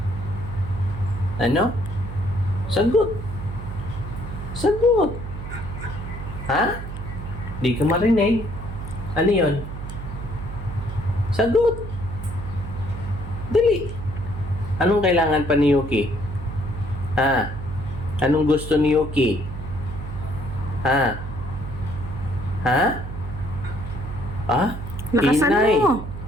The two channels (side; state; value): right; noise; hum, 8 dB below the sound